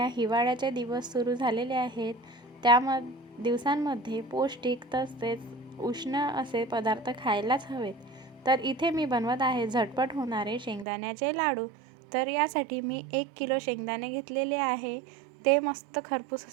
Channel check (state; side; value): drops out; left; at 10.9 s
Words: हिवाळ्याचे दिवस सुरू झालेले आहेत। दिवसांमध्ये पौष्टिक तसेच उष्ण असे पदार्थ खायलाच हवेत। तर इथे मी बनवत आहे झटपट होणारे शेंगदाण्याचे लाडू। तर यासाठी मी 1 किलो शेंगदाणे घेतलेले आहे। ते मस्त खरपूस